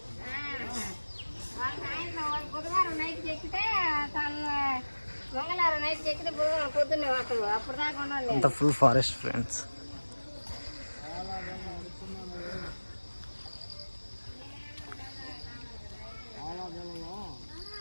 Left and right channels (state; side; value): inverted; both; correlation -1.00